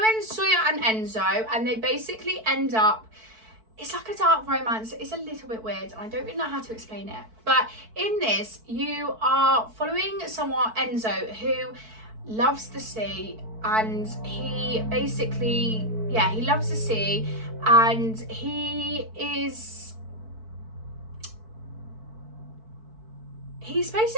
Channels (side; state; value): left; late; 4.5 ms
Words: Sawyer and Enzo, and they basically end up, it's like a dark romance. It's a little bit weird, and I don't really know how to explain it. But in this, you are following someone, Enzo, who loves the sea, and he basically, yeah, he loves the sea, and he's